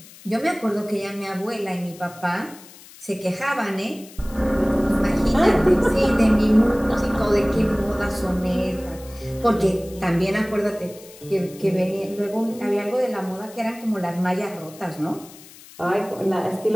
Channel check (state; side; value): noise; left; hiss, 20 dB below the sound